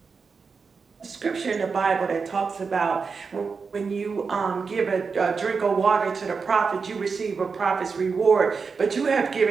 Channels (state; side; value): quieter; left; 5.1 dB